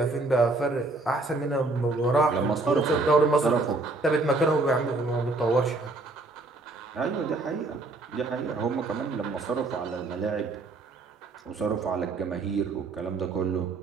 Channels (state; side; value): quieter; left; 3.4 dB